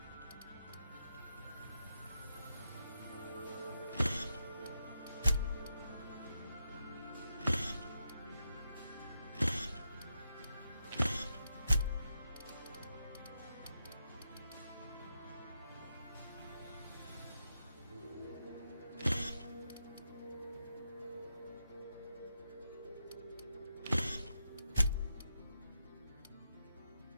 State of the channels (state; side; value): inverted; both; correlation -0.84